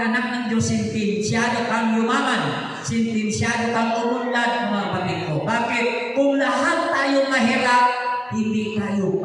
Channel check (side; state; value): both; identical; correlation 1.00